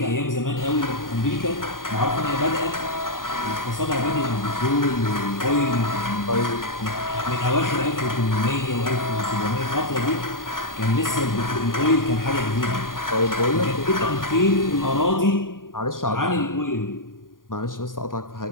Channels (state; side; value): late; right; 0.90 ms